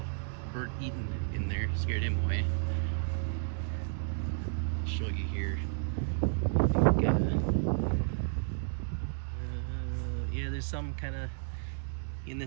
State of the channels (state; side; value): silent; left; digital silence